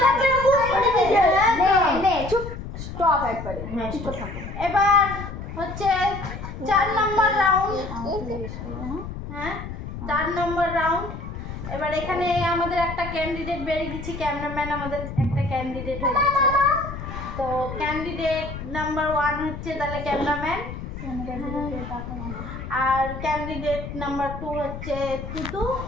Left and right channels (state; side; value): noise; left; rumble, 9 dB below the sound